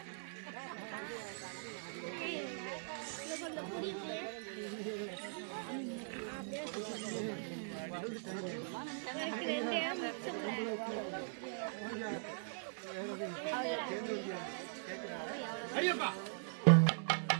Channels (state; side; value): silent; left; 51 dB below the other